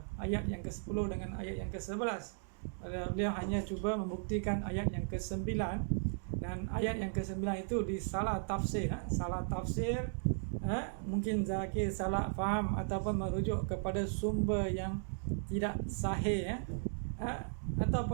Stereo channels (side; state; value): left; silent; digital silence